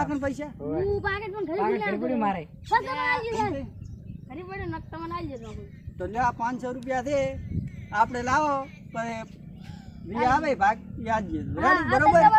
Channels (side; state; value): both; identical; correlation 1.00